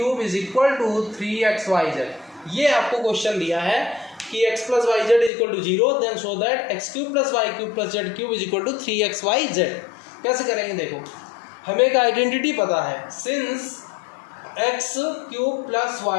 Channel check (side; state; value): right; drops out; at 5.3 s